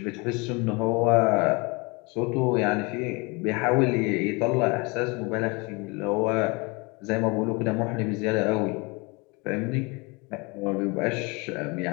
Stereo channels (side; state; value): right; quieter; 28.1 dB